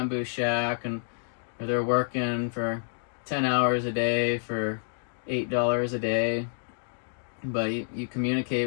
shack, and they're working for 10 hours a day for $8 a day. But you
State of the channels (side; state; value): right; silent; digital silence